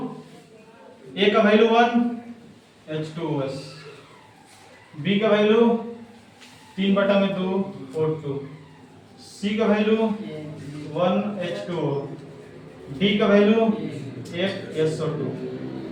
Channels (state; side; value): identical; both; correlation 1.00